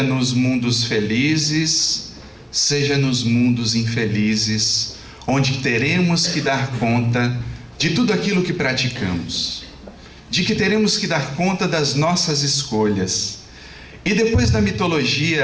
nos mundos felizes, seja nos mundos infelizes, onde teremos que dar conta de tudo aquilo que praticamos, de que teremos que dar conta das nossas escolhas. E depois da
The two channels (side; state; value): both; identical; correlation 1.00